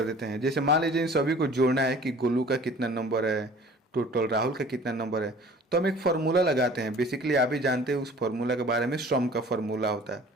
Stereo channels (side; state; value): both; normal; correlation 0.48